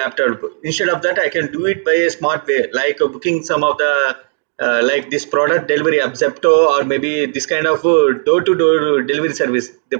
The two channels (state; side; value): silent; left; 56 dB below the other